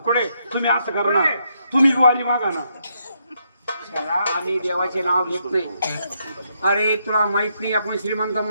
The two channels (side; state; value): both; inverted; correlation -0.77